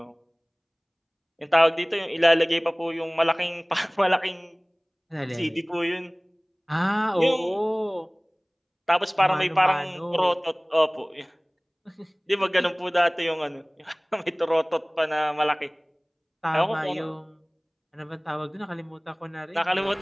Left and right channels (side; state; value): both; identical; correlation 1.00